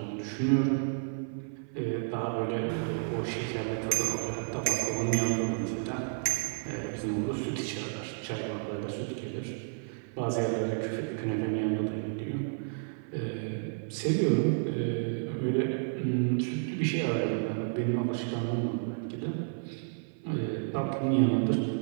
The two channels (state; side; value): silent; left; 57 dB below the other